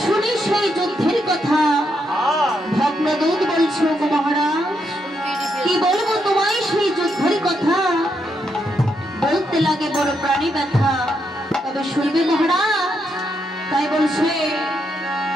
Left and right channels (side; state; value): both; normal; correlation 0.80